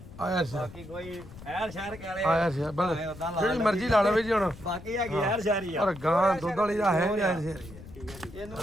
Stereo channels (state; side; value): noise; left; rumble, 16 dB below the sound